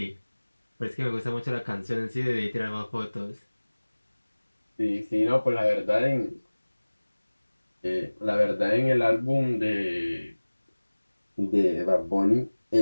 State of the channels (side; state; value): both; inverted; correlation -1.00